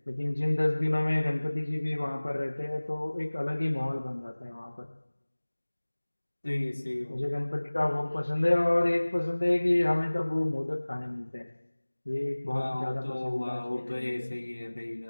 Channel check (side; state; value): both; inverted; correlation -1.00